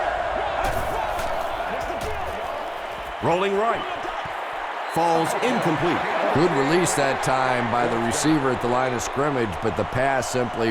Rolling right. Falls incomplete. Good release that time by the receiver at the line of scrimmage, but the pass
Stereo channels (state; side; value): identical; both; correlation 1.00